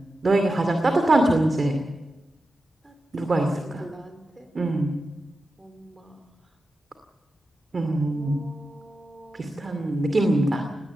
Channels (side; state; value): both; normal; correlation 0.91